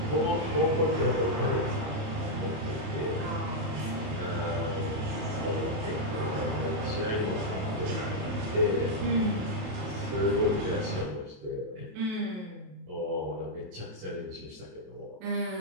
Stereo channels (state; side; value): late; left; 28 ms